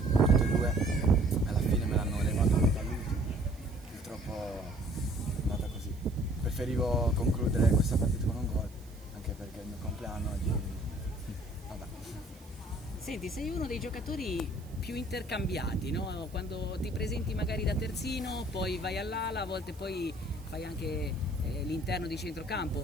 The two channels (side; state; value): right; noise; hiss, 25 dB below the sound